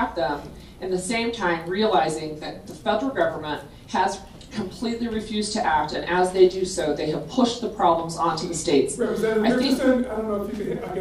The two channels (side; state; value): both; identical; correlation 1.00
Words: them, at the same time realizing that the federal government has completely refused to act, and as they do so, they have pushed the problems onto the states. Representative Richardson, I don't know if you can, I